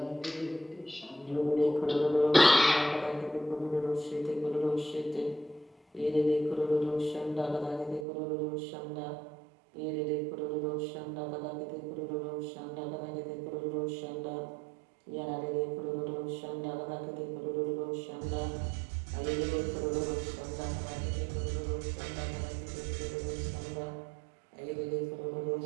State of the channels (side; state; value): left; drops out; at 8.1 s